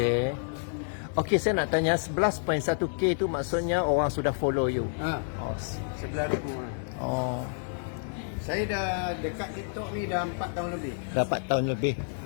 Okey, saya nak tanya 11.1K tu maksudnya orang sudah follow you. Oh. 11,000. Oh. Saya dah dekat TikTok ni dah 4 tahun lebih. Dapat tahun lebih.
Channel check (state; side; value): silent; right; digital silence